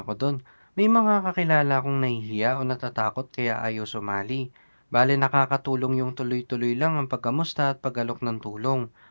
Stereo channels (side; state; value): both; inverted; correlation -1.00